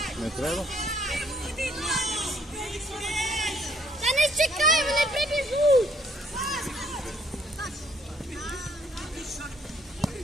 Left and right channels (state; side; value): normal; both; correlation 0.65